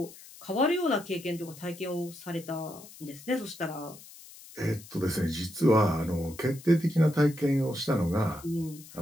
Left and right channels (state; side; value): noise; left; hiss, 19 dB below the sound